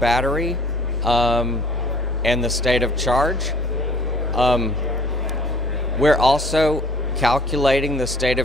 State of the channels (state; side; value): normal; both; correlation 0.52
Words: and the state of charge. We're also calculating the state